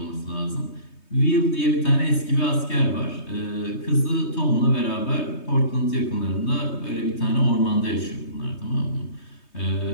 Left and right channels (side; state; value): right; late; 3.2 ms